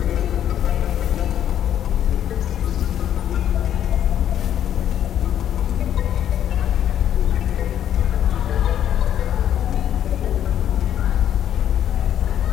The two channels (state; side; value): quieter; right; 10.4 dB